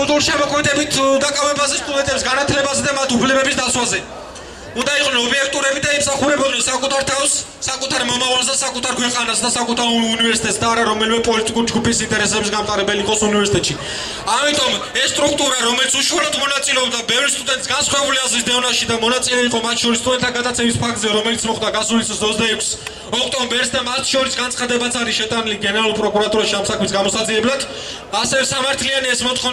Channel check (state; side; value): identical; both; correlation 1.00